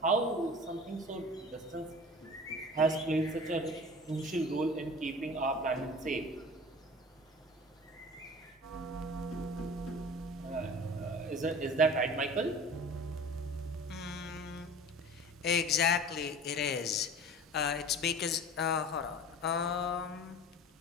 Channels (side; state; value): both; normal; correlation 0.40